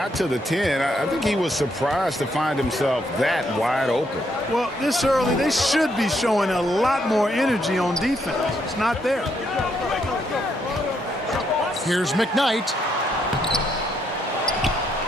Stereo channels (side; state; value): both; normal; correlation 0.75